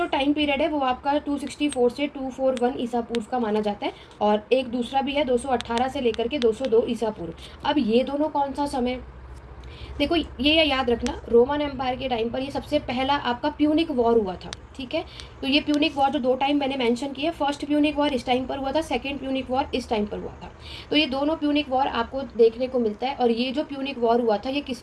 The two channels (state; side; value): identical; both; correlation 1.00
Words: टाइम पीरियड है वो आपका 264 से 241 ईसा पूर्व का माना जाता है, और एक दूसरा भी है 218 से लेकर के 202 ईसा पूर्व। अब ये दोनों कौन सा समय, देखो ये याद रखना, रोमन एम्पायर के टाइम पर ये सबसे पहला आपका प्यूनिक वॉर हुआ था, ठीक है। तो ये प्यूनिक वॉर जो दो टाइम मैंने मेंशन किया, फर्स्ट प्यूनिक वॉर इस टाइम पर हुआ था, सेकंड प्यूनिक वॉर इस टाइम पर हुआ था। तो ये दोनों प्यूनिक वॉर आपको देखने को मिलता है, और ये जो प्यूनिक वॉर हुआ था ये